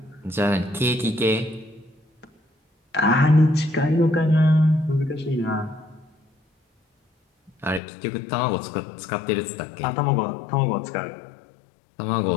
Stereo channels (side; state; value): right; drops out; at 7.8 s